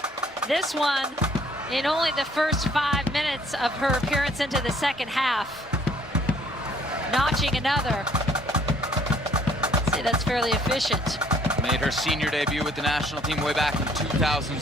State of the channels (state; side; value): normal; both; correlation 0.61